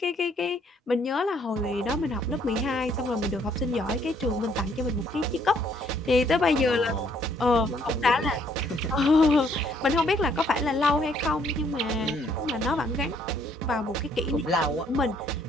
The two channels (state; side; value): normal; both; correlation 0.66